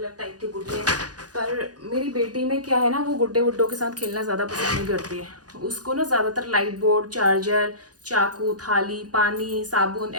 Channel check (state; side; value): late; left; 0.68 ms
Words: टाइप के गुड्डे हैं। पर मेरी बेटी में क्या है ना, वो गुड्डे वुड्डों के साथ खेलना ज़्यादा पसंद नहीं करती है। उसको ना ज़्यादातर लाइट बोर्ड, चार्जर, चाकू, थाली, पानी, साबुन